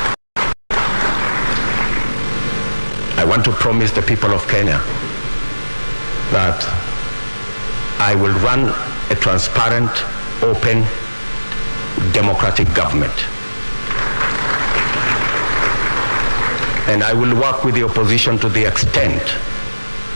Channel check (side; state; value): both; inverted; correlation -1.00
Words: I want to promise the people of Kenya that I will run a transparent, open, democratic government. And I will work with the opposition to the extent